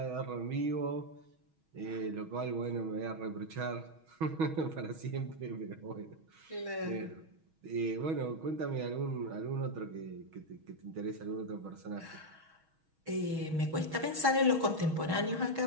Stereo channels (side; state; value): left; late; 6.3 ms